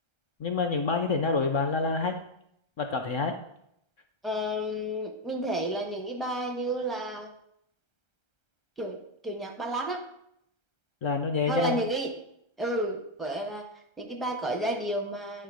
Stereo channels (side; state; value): right; late; 1.3 ms